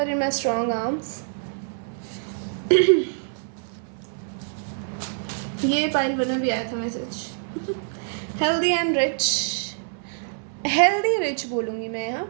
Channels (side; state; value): left; silent; 61 dB below the other